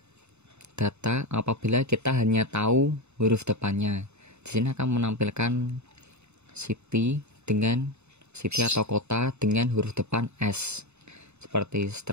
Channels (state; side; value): late; left; 0.81 ms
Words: data apabila kita hanya tahu huruf depannya. Di sini akan menampilkan city atau kota dengan huruf depan S, seperti